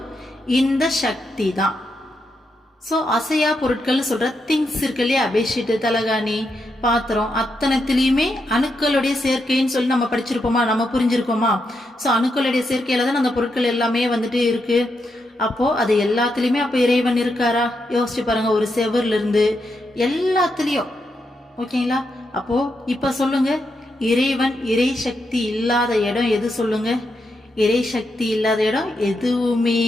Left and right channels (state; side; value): normal; both; correlation 0.83